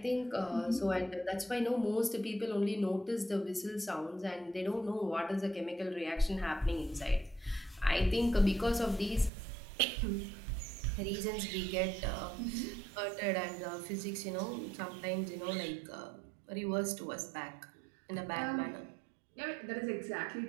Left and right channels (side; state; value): left; drops out; at 9.3 s